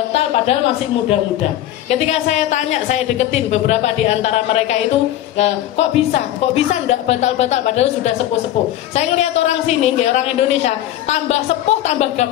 padahal masih muda-muda. Ketika saya tanya, saya deketin beberapa di antara mereka itu kok bisa enggak batal-batal padahal sudah sepuh-sepuh. Saya ngelihat orang sini, orang Indonesia, tambah sepuh tambah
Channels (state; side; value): quieter; right; 13.0 dB